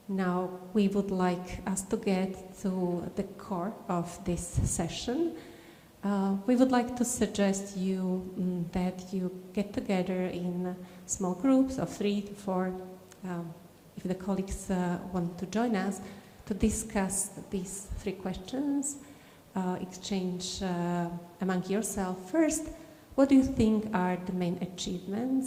Now we would like us to get to the core of this session. We would like to suggest you that you get together in small groups of 3 to 4, if the colleagues want to join us, to discuss these 3 questions, exchange among yourself. First, what do you think are the main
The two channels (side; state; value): both; identical; correlation 1.00